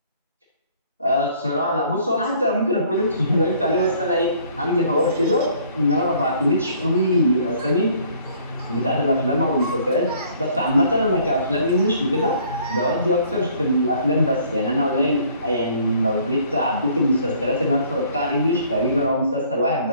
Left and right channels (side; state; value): both; inverted; correlation -0.58